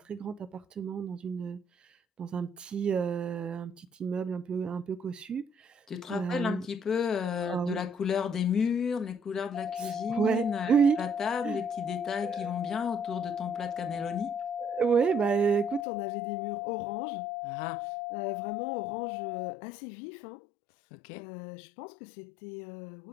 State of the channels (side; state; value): right; drops out; at 15.9 s